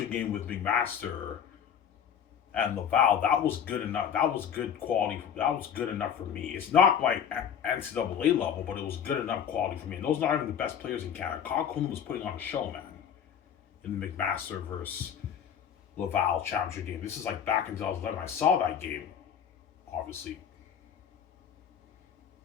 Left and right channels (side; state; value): right; quieter; 8.3 dB